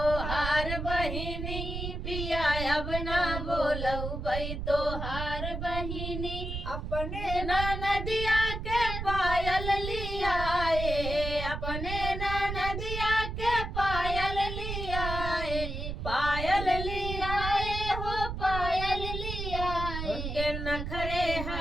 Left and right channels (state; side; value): noise; right; rumble, 5 dB below the sound